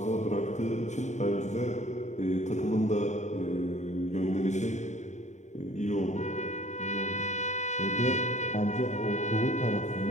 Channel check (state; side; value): late; right; 0.34 ms